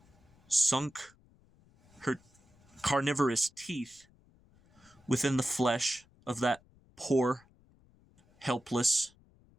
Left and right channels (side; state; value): left; noise; rumble, 30 dB below the sound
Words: sunk her carnivorous teeth within the flesh of that poor, helpless